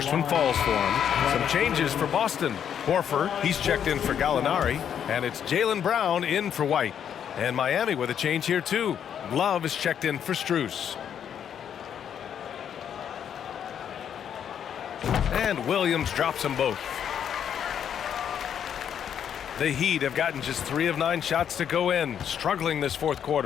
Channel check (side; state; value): right; quieter; 8.8 dB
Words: one falls for him. Some changes for Boston. Horford, he's checked in for Gallinari, and it's Jaylen Brown in for White. And Miami with a change here too. Love is checked in for Strus. And Williams drops them both. The Heat have gotten just 3 of 9 shots to go in, struggling this fourth